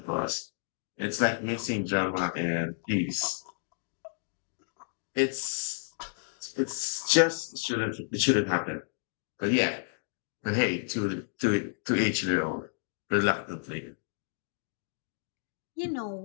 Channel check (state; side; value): silent; right; digital silence